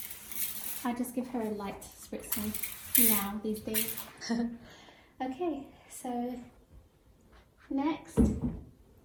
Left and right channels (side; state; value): both; identical; correlation 1.00